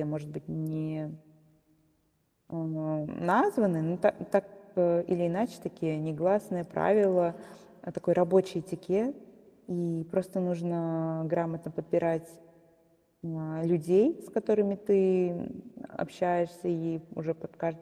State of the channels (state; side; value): identical; both; correlation 1.00